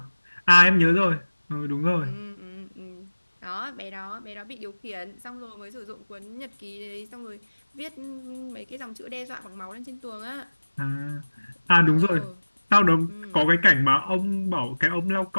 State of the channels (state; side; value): inverted; both; correlation -1.00